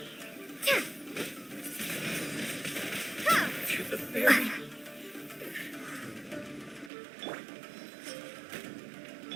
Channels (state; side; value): drops out; left; at 6.9 s